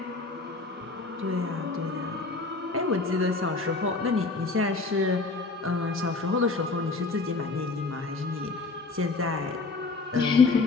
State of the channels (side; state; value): right; quieter; 3.8 dB